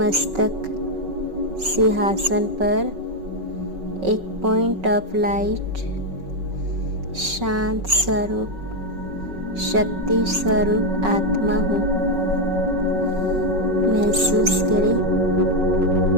सिंहासन पर एक पॉइंट ऑफ लाइट शांत स्वरूप शक्ति स्वरूप आत्मा हूँ। महसूस करें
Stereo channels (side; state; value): left; late; 5.3 ms